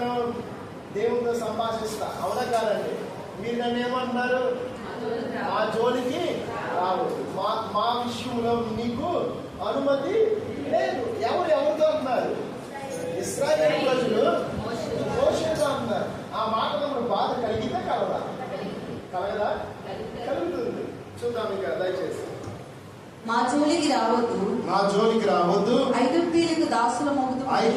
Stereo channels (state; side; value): identical; both; correlation 1.00